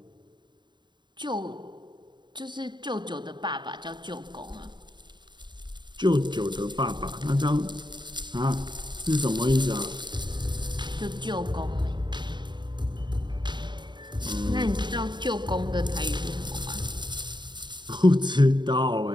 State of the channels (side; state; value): left; late; 0.22 ms